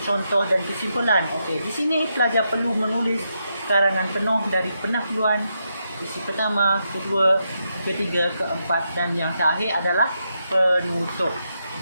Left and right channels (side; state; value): both; inverted; correlation -0.83